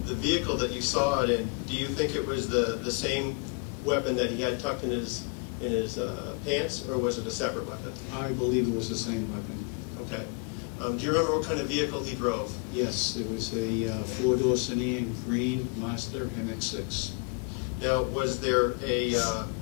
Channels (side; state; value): right; quieter; 34.3 dB